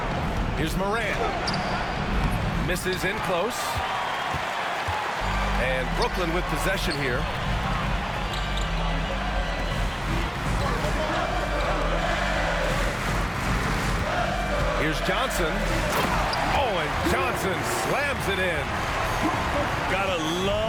Here's Morant. Misses in close. And Brooklyn with possession here. Here's Johnson. Oh, and Johnson slams it in. Gotta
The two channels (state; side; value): identical; both; correlation 1.00